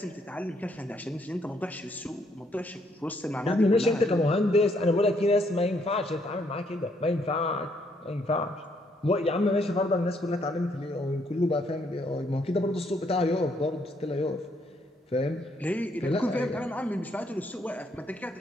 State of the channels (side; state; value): both; normal; correlation 0.71